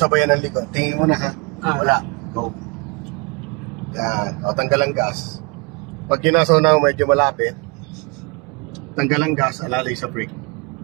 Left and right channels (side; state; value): left; quieter; 28.5 dB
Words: sabayan ng likod. Tingin mo na, wala. Go. Yan. Tanggal ang gas. Pag yun nasa una medyo malapit, tanggal ang gas, alalay sa brake.